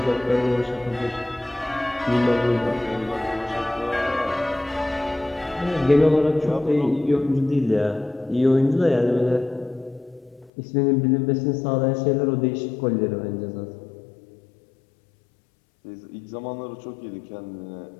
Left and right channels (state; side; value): drops out; right; at 10.5 s